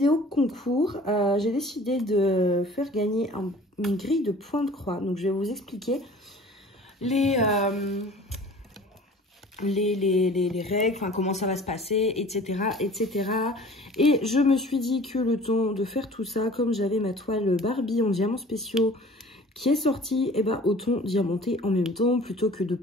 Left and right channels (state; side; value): normal; both; correlation 0.46